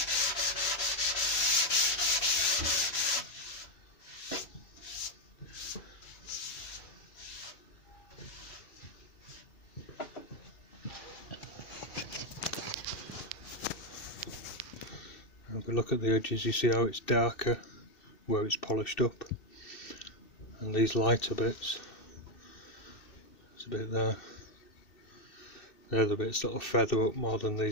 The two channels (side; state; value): right; late; 2.6 ms